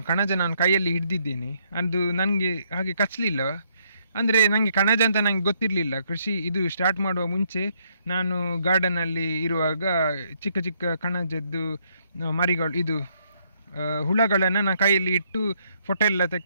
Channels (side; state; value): both; inverted; correlation -0.72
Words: ಕಣಜ ನಾನು ಕೈಯಲ್ಲಿ ಹಿಡ್ದಿದ್ದೇನೆ. ಅದು ನನಗೆ ಹಾಗೆ ಕಚ್ಚಲಿಲ್ಲ. ಅಂದರೆ ನನಗೆ ಕಣಜ ಅಂತ ನನಗೆ ಗೊತ್ತಿರಲಿಲ್ಲ. ಕೃಷಿ ಇದು ಸ್ಟಾರ್ಟ್ ಮಾಡುವ ಮುಂಚೆ ನಾನು ಗಾರ್ಡನಲ್ಲಿ ಇರುವಾಗ ಚಿಕ್ಕ ಚಿಕ್ಕ ಕಣಜದ್ದು ಮರಿಗಳು, ಇದು ಹುಳಗಳನ್ನು ನಾನು ಕೈಯಲ್ಲಿ ಇಟ್ಟು ಫೋಟೋ ಎಲ್ಲ